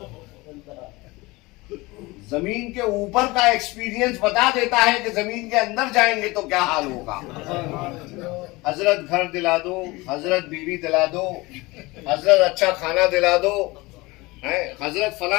जमीन के ऊपर का एक्सपीरियंस बता देता है कि जमीन के अंदर जाएंगे तो क्या हाल होगा। हजरत घर दिला दो, हजरत बीवी दिला दो, हजरत अच्छा खाना दिला दो, हजरत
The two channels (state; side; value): quieter; right; 22.5 dB